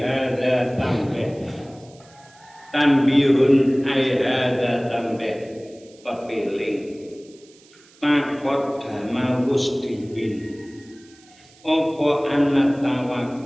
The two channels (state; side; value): noise; right; hiss, 27 dB below the sound